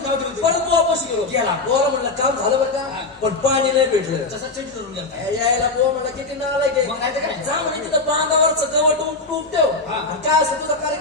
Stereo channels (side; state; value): right; quieter; 3.5 dB